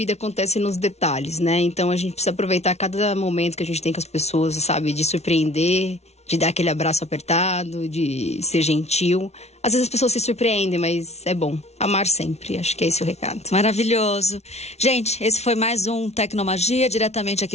acontece nos detalhes, né? Então a gente precisa aproveitar cada momento que a gente tem com as pessoas, sabe? De surpreender, de dar aquele abraço apertado, de ser gentil. Às vezes as pessoas se surpreendem, mas é bom. Amar sempre, acho que é esse o recado. Maravilhoso. Gente, esse foi mais um Tecnomagia, diretamente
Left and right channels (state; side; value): late; right; 0.31 ms